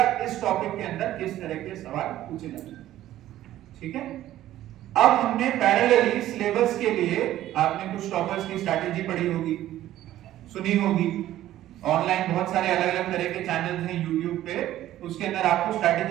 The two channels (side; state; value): left; quieter; 13.6 dB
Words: इस टॉपिक के अंदर किस तरह के सवाल पूछे जाते हैं। ठीक है। अब हमने पैरेलली सिलेबस के लिए आपने कुछ टॉपर्स की स्ट्रैटेजी पढ़ी होगी, सुनी होगी। ऑनलाइन बहुत सारे अलग अलग तरह के चैनल्स हैं यूट्यूब पे, उसके अंदर आपको